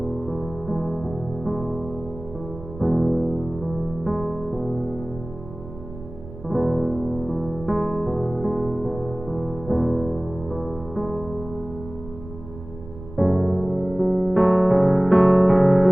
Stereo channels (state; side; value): noise; right; rumble, 14 dB below the sound